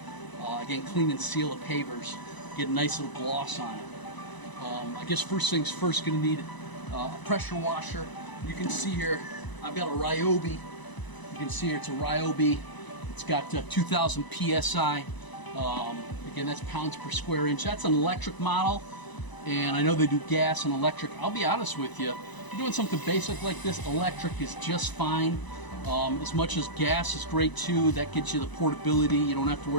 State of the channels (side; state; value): right; late; 1.0 ms